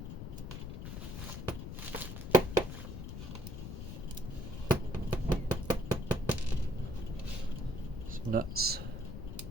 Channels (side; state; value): left; noise; rumble, 6 dB below the sound